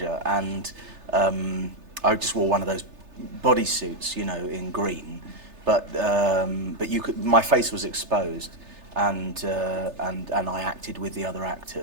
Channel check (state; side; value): late; left; 3.3 ms